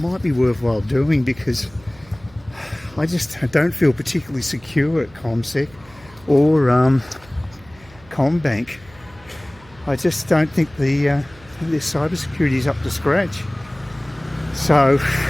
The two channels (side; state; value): right; noise; hum, 24 dB below the sound